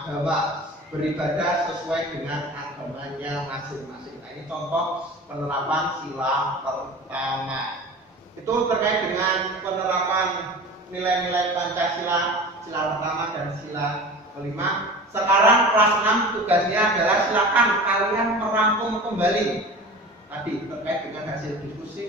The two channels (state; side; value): normal; both; correlation 0.36